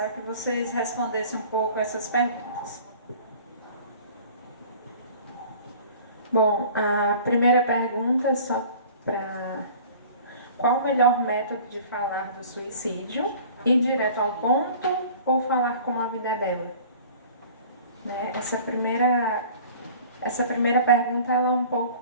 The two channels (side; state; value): both; inverted; correlation -0.45